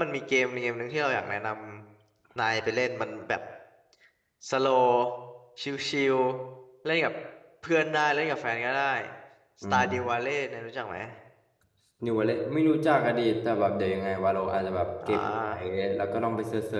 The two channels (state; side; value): identical; both; correlation 1.00